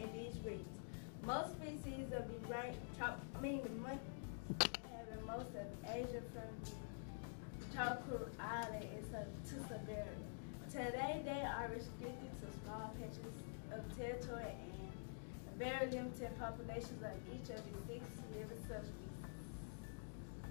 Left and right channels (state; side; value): silent; right; digital silence